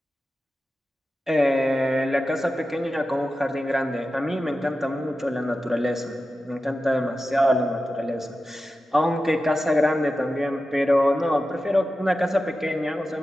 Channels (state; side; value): normal; both; correlation 0.92